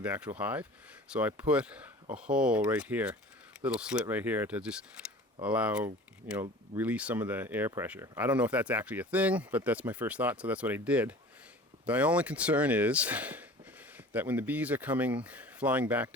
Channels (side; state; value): both; normal; correlation 0.42